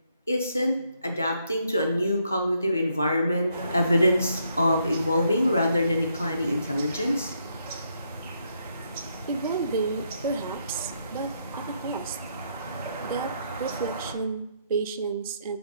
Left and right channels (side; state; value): both; inverted; correlation -0.75